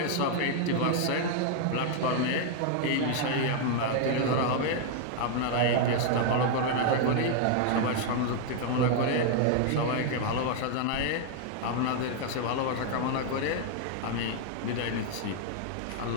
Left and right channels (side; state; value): both; different; correlation 0.00